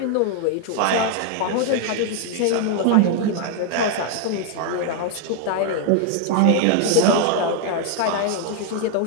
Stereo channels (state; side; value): different; both; correlation 0.00